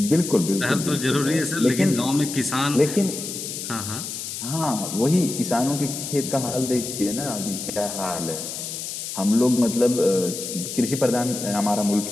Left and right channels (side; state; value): left; noise; hiss, 7 dB below the sound